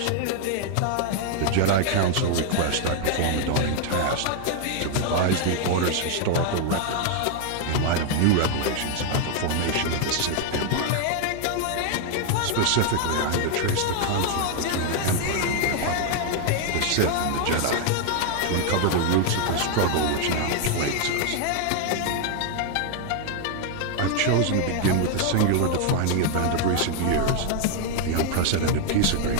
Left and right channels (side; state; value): both; different; correlation 0.00